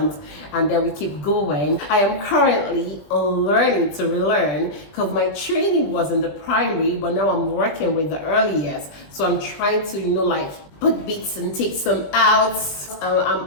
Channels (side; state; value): right; late; 20 ms